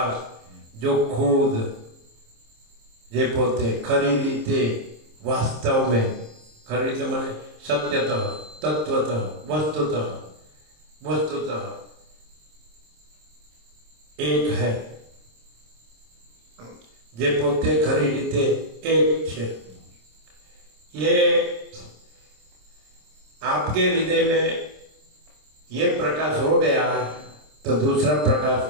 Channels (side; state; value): left; late; 26 ms